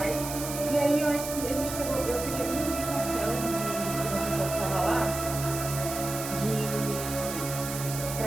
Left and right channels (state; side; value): noise; right; hiss, 7 dB below the sound